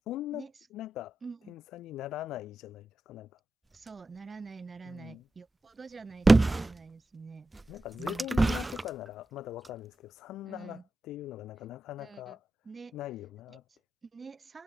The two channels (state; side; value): normal; both; correlation 0.91